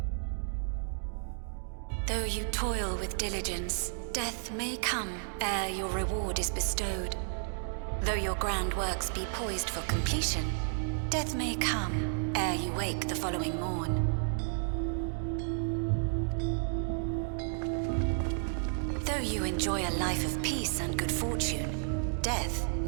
Though you toil with diligence, death may come ere your reward is bestowed. Though your grand works be poised for completion, death may come ere you wake the following morn. Though you enjoy a life of peace and good fortune, death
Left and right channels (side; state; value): left; silent; digital silence